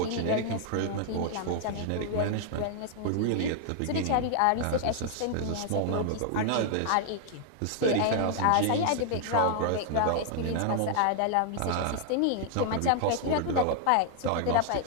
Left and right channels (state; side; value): different; both; correlation 0.00